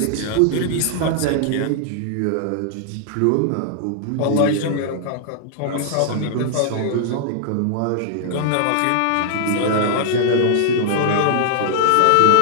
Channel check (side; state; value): both; different; correlation -0.01